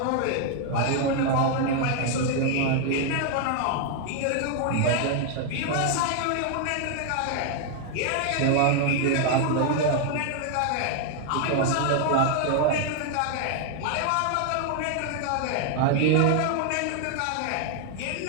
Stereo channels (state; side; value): different; both; correlation 0.00